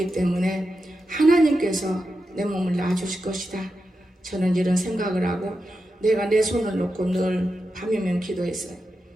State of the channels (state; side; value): normal; both; correlation 0.89